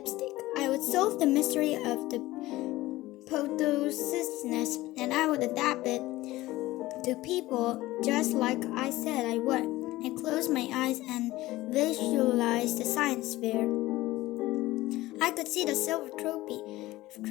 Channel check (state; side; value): quieter; right; 17.7 dB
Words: I would solve the mystery of the photosynthesis and I would adapt it to people just like I said I would. I closed my eyes and visualized the science fair. I could see the silver trophy